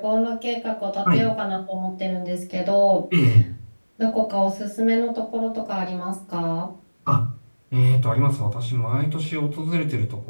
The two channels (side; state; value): both; inverted; correlation -1.00